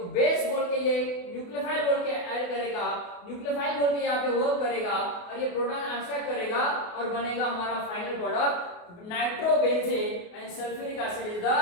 बेस बोल के ये न्यूक्लियोफाइल बोल के ऐड करेगा, न्यूक्लियोफाइल बोल के यहाँ पे वर्क करेगा और ये प्रोटॉन एब्स्ट्रैक्ट करेगा और बनेगा हमारा final product nitrobenzene and sulphuric acid is the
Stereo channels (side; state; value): right; late; 28 ms